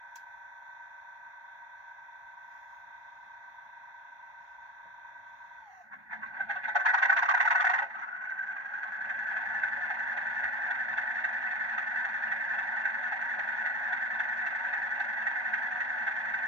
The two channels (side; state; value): left; late; 1.2 ms